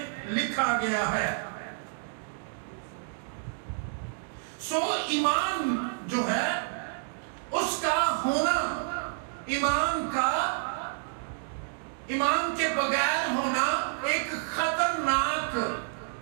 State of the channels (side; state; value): left; silent; digital silence